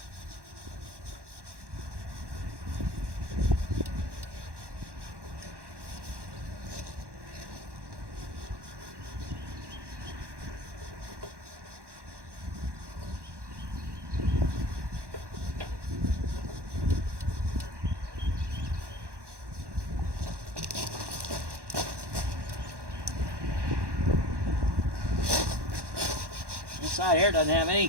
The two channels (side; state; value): left; late; 1.1 ms